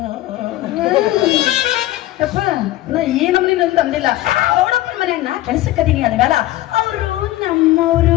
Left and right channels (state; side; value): quieter; right; 16.0 dB